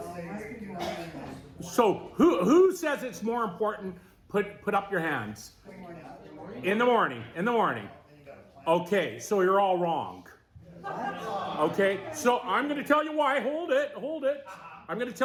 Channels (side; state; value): both; identical; correlation 1.00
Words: So who says it's more important? Put up your hands. In the morning. Okay, so you're all wrong. Okay, so I'm going to tell you why. Hold it. I'm going to